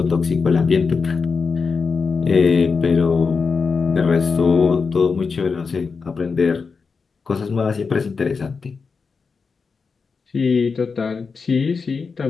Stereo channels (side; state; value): right; quieter; 5.0 dB